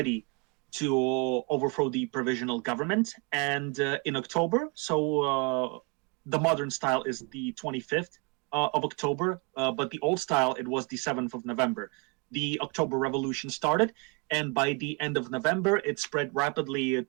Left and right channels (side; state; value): left; quieter; 30.9 dB